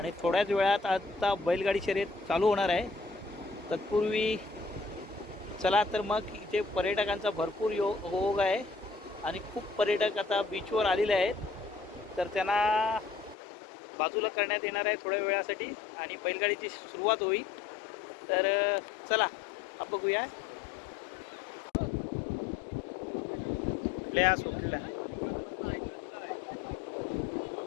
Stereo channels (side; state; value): right; drops out; at 13.4 s